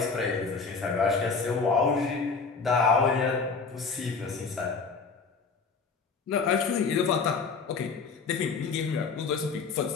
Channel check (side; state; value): right; quieter; 4.9 dB